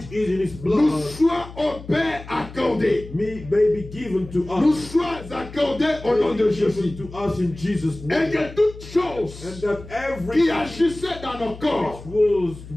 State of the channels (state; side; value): noise; left; hum, 15 dB below the sound